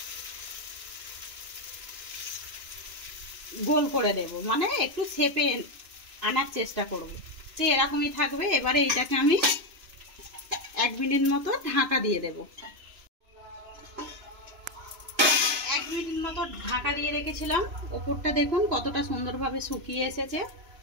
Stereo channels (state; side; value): late; left; 3.0 ms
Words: গোল করে দেব, মানে একটু শেপে আনার চেষ্টা করব। তো এরকমই থাকবে। এবারে এইটাকে আমি 1 মিনিট মতো ঢাকা দিয়ে দেব। 1 মিনিট মতো ঢাকা দিয়ে রেখেছিলাম। ওপরটা দেখুন কতটা সুন্দরভাবে শুকিয়ে এসেছে।